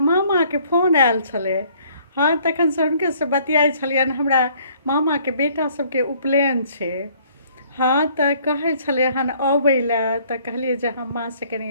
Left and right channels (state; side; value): inverted; both; correlation -0.60